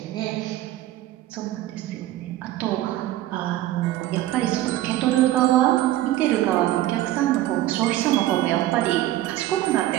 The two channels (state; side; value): quieter; left; 14.7 dB